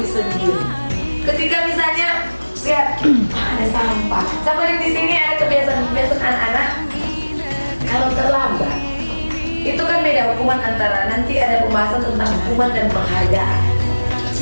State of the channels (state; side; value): inverted; both; correlation -1.00